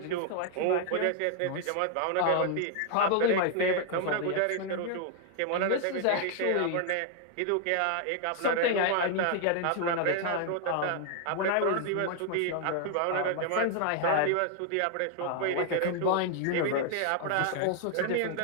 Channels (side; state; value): both; different; correlation 0.00